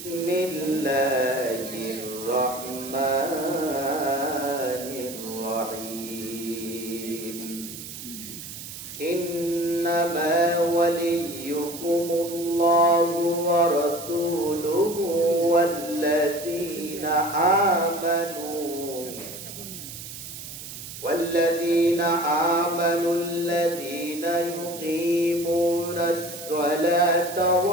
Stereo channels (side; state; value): right; noise; hiss, 11 dB below the sound